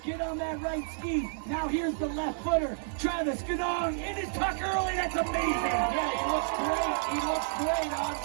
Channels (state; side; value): silent; left; 58 dB below the other